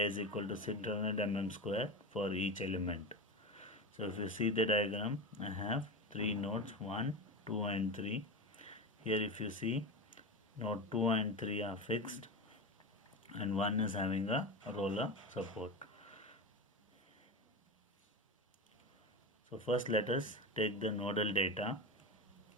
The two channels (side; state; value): both; normal; correlation 0.21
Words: is equal to 600 mm square for each element. So if you see the diagram, I have 3 nodes 1, 2 and 3. Here if you see, node 2 and 3 are fixed and 1 is having a roller support. So first let us take the nodal data